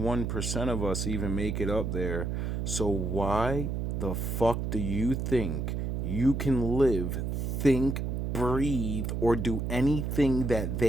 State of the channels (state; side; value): noise; right; hum, 1 dB below the sound